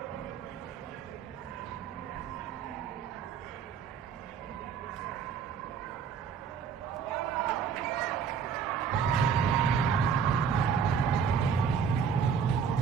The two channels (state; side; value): quieter; left; 6.8 dB